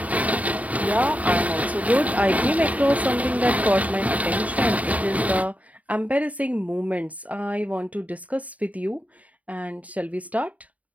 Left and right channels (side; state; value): left; late; 0.070 ms